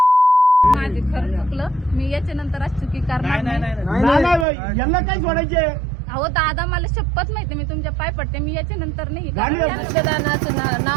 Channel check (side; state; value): left; drops out; at 4.5 s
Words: माझे खरं चुकलं मी याच्या नंतर आज चुकी करणार नाही यांना काय सोडायचे अहो दादा मला शपथ माहिती मी तुमच्या पाय पडते मी याच्या नंतर नाही मतदानाचं